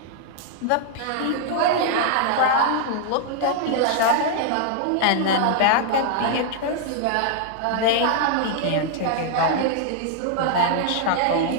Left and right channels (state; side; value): different; both; correlation 0.00